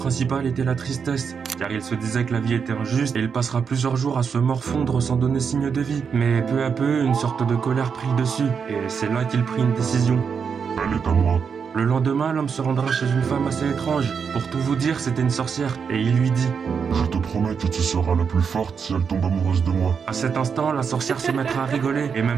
était la tristesse, car il se disait que la vie était injuste et il passera plusieurs jours à se morfondre sans donner signe de vie. Mais peu à peu, une sorte de colère prit le dessus, et c'est là qu'il prit une décision. Elle est à moi. Le lendemain, l'homme se rendra chez une femme assez étrange. Pour tout vous dire, c'était une sorcière, et il lui dit: Je te promets que tu seras la plus forte si elle tombe amoureuse de moi. À cet instant, la sorcière se mettra à rigoler, et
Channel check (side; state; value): left; quieter; 6.3 dB